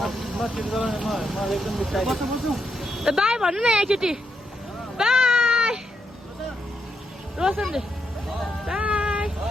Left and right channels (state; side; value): normal; both; correlation 0.80